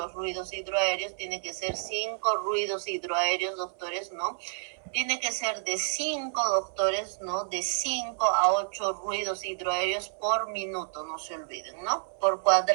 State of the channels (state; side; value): silent; left; 58 dB below the other